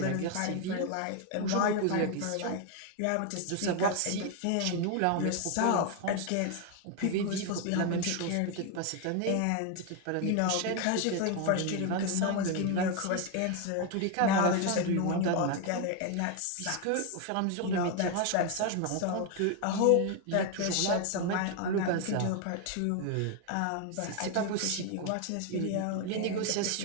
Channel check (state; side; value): different; both; correlation 0.01